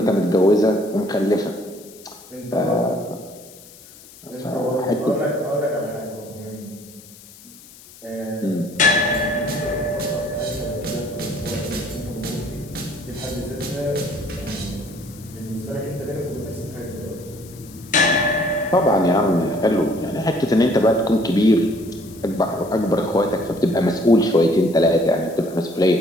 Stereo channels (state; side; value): noise; left; hiss, 21 dB below the sound